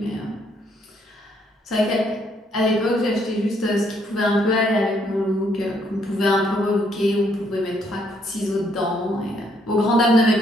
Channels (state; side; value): normal; both; correlation 0.70